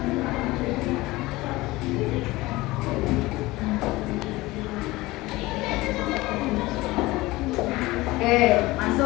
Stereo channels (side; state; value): right; quieter; 20.0 dB